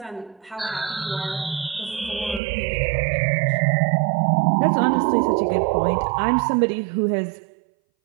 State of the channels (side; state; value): left; drops out; at 2.4 s